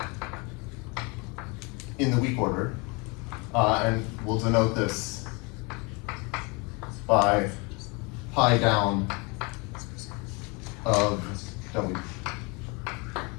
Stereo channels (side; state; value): right; quieter; 29.4 dB